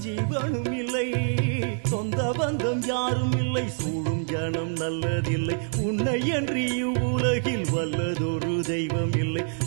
ஜீவனும் இல்லை. சொந்த பந்தம் யாரும் இல்லை, சூழும் ஜனம் நல்லதில்லை, உன்னை என்று இவ்வுலகில் வல்லதொரு தெய்வம் இல்லை.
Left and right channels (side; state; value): left; silent; 60 dB below the other